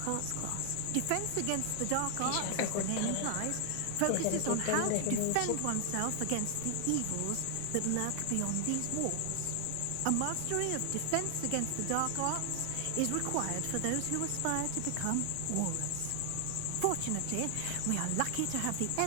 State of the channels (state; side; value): different; both; correlation 0.00